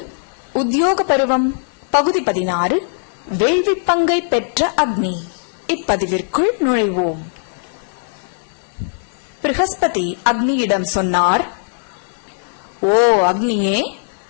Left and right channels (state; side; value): silent; right; digital silence